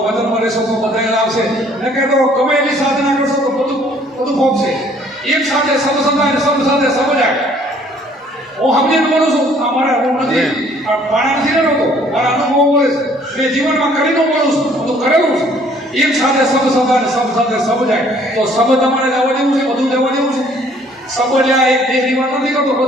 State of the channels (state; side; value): normal; both; correlation 0.59